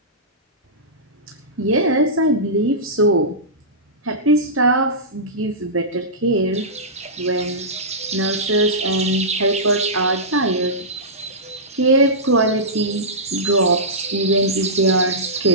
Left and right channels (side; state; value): both; normal; correlation -0.16